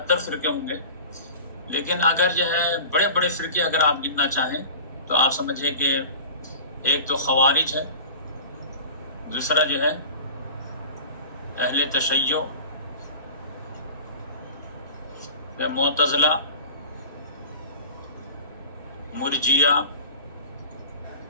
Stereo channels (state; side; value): inverted; both; correlation -0.35